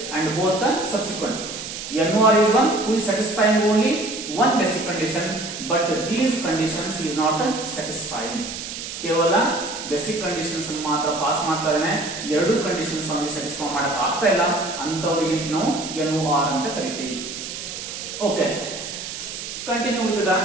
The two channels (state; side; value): noise; right; hiss, 8 dB below the sound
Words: and both the subsequent. NOR is one who is satisfying only one basic condition but these conditions is not satisfying. ಕೇವಲ basic conditions ಮಾತ್ರ pass ಮಾಡ್ತಾ ಇದ್ದಾನೆ, ಎರಡು conditions ಅವನಿಗೆ satisfy ಮಾಡಕ್ ಆಗ್ತಾ ಇಲ್ಲ, ಅಂತವರಿಗೆ ನಾವು NOR ಅಂತ ಕರಿತೀವಿ. Okay, continue with the